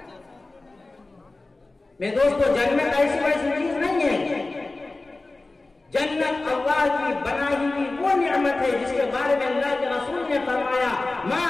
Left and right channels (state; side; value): quieter; right; 3.2 dB